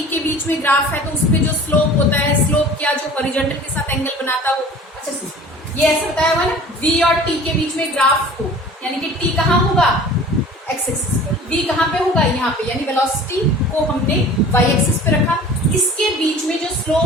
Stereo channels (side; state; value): both; normal; correlation 0.44